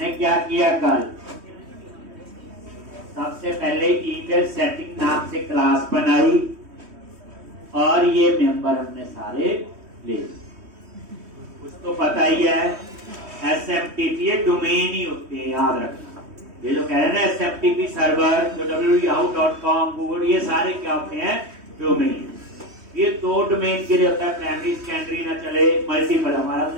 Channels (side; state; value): left; late; 3.1 ms